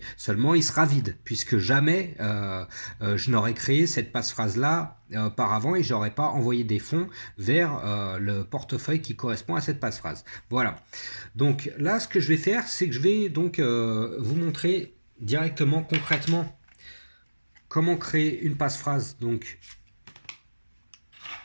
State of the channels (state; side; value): inverted; both; correlation -1.00